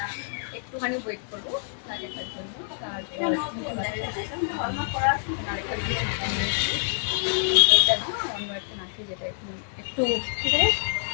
একটুখানি ওয়েট করবো নাকেরটার জন্য। তারপর আমরা একটা নাকে যেটা একটু একটু কিছু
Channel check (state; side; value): silent; right; digital silence